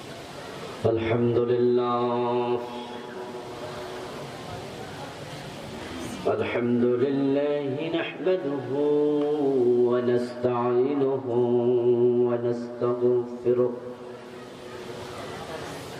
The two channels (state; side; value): identical; both; correlation 1.00